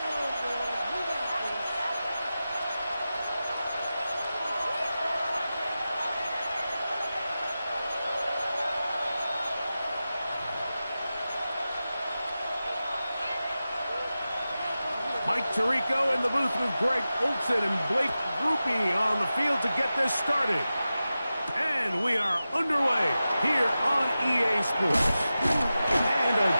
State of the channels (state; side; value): inverted; both; correlation -0.94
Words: Mike Tirico in the booth with Greg Olson and Blake Grupe on the field to get this started. And we are underway here on EA Sports. And a